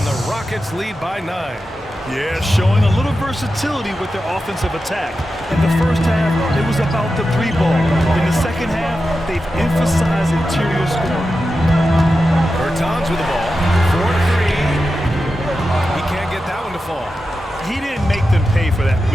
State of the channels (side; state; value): both; normal; correlation 0.91